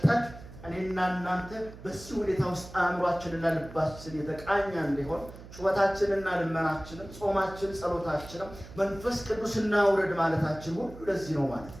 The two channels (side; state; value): right; noise; hum, 16 dB below the sound